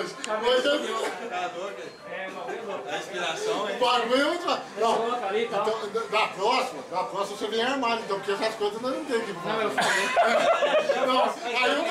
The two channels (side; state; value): both; identical; correlation 1.00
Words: É, uma vez louca. A inspiração, hein? O bagulho é muito... Coloca ali e tal. Então, da próxima você vem armado, então, porque essas coisas nós não tem aqui. Não, eu falei.